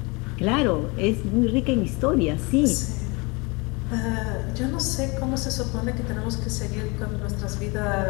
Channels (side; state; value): right; quieter; 27.5 dB